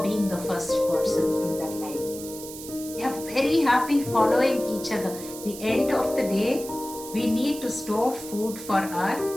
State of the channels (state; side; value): noise; right; hiss, 13 dB below the sound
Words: being the first person in that line. They are very happy following each other. The end of the day, we need to store food for our